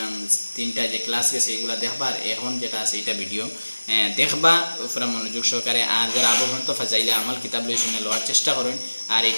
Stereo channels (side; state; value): both; inverted; correlation -1.00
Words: তিনটা যে ক্লাস গেছে এগুলা দেখবা আর এখন যেটা আছে এটা ভিডিও দেখবা পুরা মনোযোগ সহকারে আর যারা আবহাওয়া তো ফাজাইলে আমল কিতাব লই শুনে লওয়ার চেষ্টা করেন আর